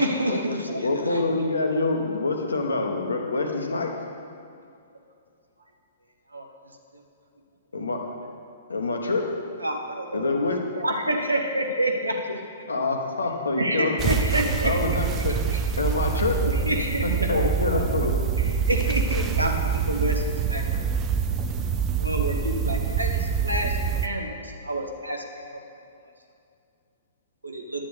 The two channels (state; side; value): inverted; both; correlation -0.30